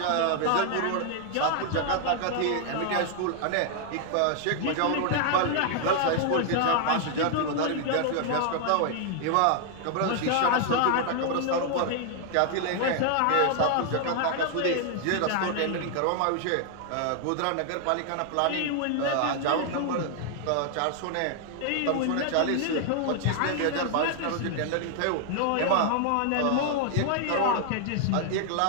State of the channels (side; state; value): both; different; correlation 0.00